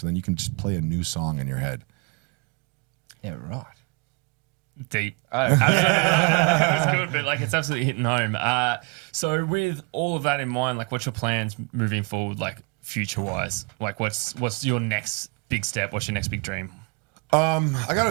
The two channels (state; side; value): quieter; left; 30.9 dB